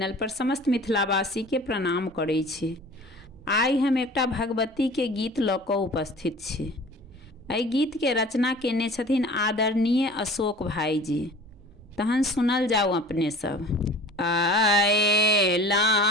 पर समस्त मिथिलावासी के प्रणाम करै छी। आइ हम एकटा भगवती के गीत लऽ कऽ उपस्थित छी। एहि गीत के रचना केने छथिन आदरणीय अशोक भाईजी। तहन सुनल जाओ अपने सब। आएला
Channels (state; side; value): normal; both; correlation 0.43